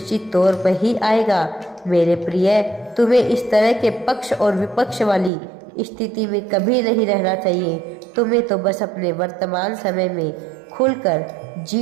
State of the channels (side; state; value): left; drops out; at 5.3 s